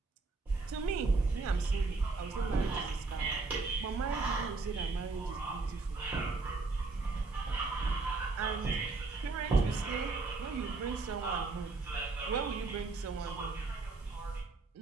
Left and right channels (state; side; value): quieter; left; 3.8 dB